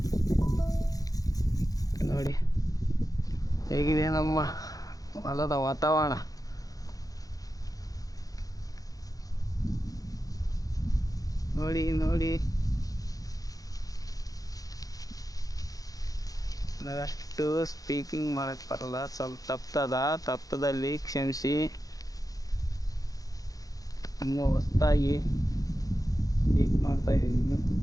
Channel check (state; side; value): late; right; 0.17 ms